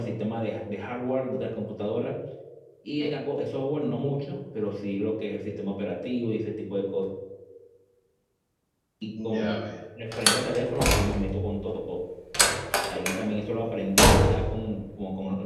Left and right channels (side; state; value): both; identical; correlation 1.00